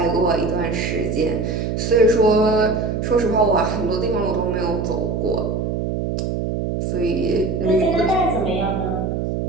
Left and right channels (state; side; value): noise; right; hum, 1 dB below the sound